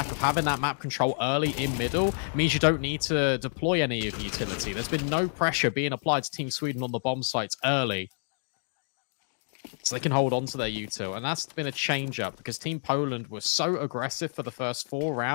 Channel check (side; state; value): right; silent; digital silence